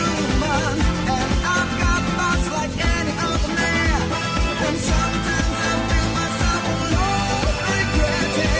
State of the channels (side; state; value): both; identical; correlation 1.00